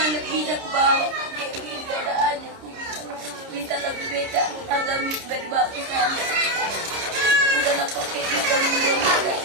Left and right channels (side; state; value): left; late; 30 ms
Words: bisa aku bawa kayak gini udah aja aku minta lagu beda agami dari bawa ke sana udah lah kok kayak gitu